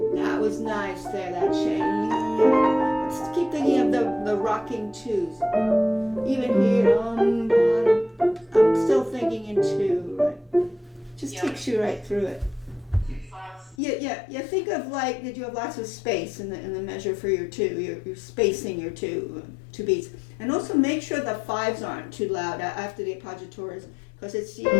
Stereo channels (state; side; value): drops out; right; at 13.8 s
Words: That was nice there, that change. Let's keep thinking of the rocking twos. Even here, I'm still thinking in two, right? Just takes you right through it. Yeah. Think of like, did you have lots of space in the measure for your two? You're spacing your two beats, and also make sure the fives aren't too loud after the appoggiatures, because it's